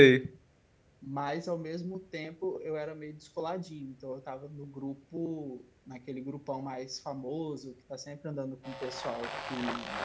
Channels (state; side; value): identical; both; correlation 1.00